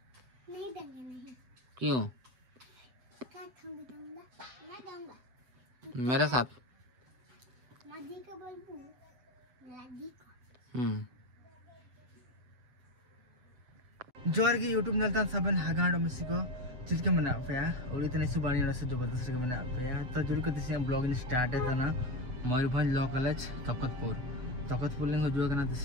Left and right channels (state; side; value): late; left; 7.8 ms